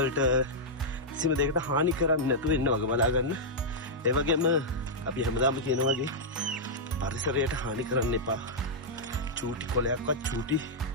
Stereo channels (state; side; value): normal; both; correlation -0.07